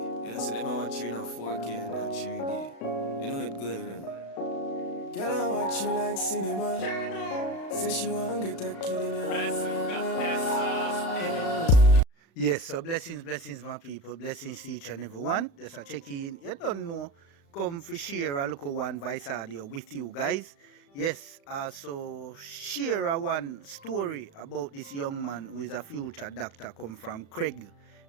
know, see them watching on 4K and not 3D. You know it good, you know. Girl, I watch you like cinema. Say she want get a kid in her. Yes, so blessings, my people. Blessings to each and every one. Just a check in. You don't know. Come for share a local one voice audio with you guys. Yes, so share a one story about this young man who is a future doctor come from Craig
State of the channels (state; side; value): late; right; 36 ms